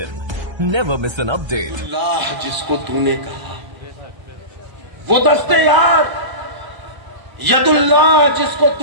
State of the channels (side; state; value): left; late; 1.0 ms